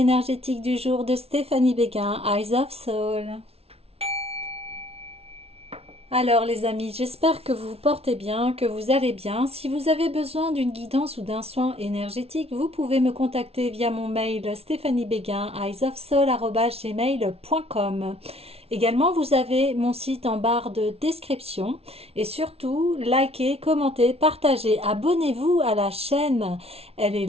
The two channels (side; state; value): left; late; 0.29 ms